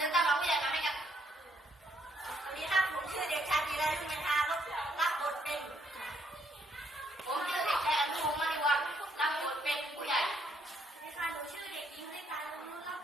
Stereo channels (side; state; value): both; normal; correlation 0.71